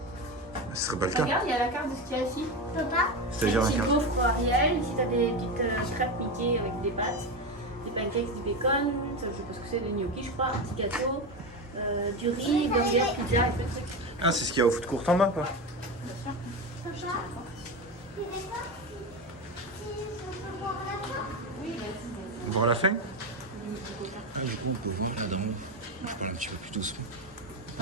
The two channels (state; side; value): normal; both; correlation 0.17